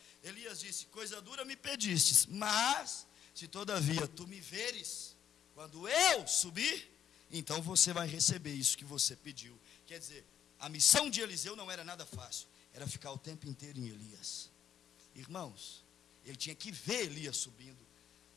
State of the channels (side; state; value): right; quieter; 9.6 dB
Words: Elias disse: coisa dura me pedistes, mas se todavia tu me veres, quando eu subir, então você vai receber isso que você pediu. Quer dizer, a missão de Eliseu não era nada fácil, era ficar o tempo inteiro em Elias. Irmãos, ele tinha que ver Elias subindo.